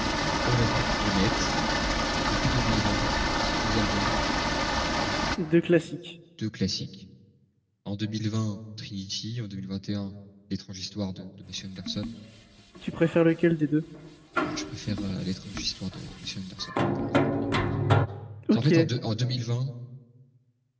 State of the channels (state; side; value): identical; both; correlation 1.00